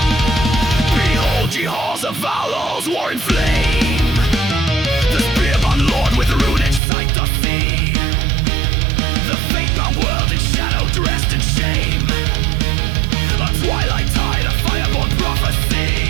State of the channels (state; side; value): drops out; left; at 6.8 s